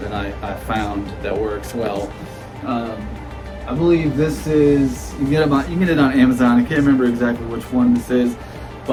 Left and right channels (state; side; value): identical; both; correlation 1.00